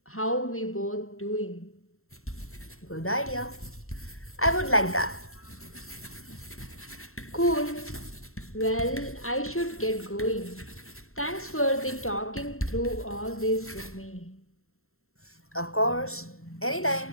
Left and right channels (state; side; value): late; right; 0.62 ms